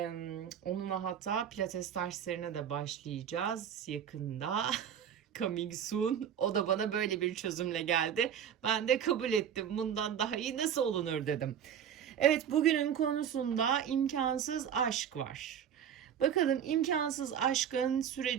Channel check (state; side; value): quieter; left; 8.8 dB